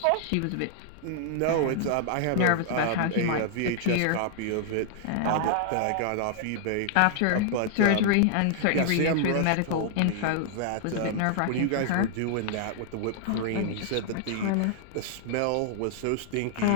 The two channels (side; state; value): both; different; correlation -0.01